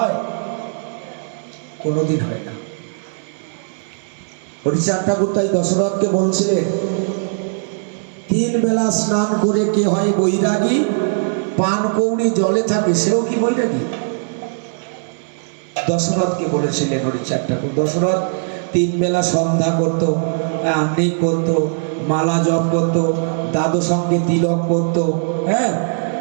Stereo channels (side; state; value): left; silent; digital silence